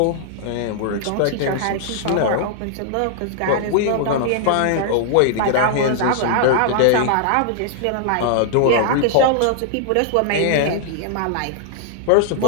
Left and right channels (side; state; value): both; different; correlation -0.01